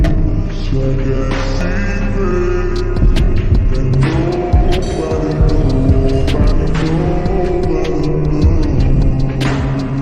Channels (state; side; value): identical; both; correlation 1.00